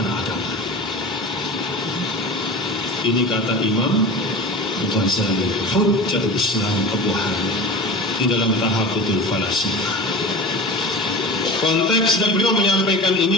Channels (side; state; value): both; normal; correlation 0.33